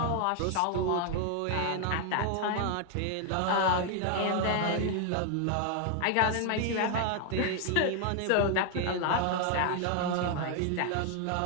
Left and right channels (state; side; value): different; both; correlation 0.00